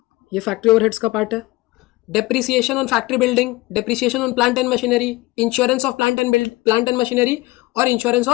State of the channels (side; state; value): right; quieter; 21.1 dB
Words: ये फैक्ट्री ओवरहेड्स का पार्ट है। Depreciation on factory building, depreciation on plant and machinery, insurance of plant and machinery और इंश्योरेंस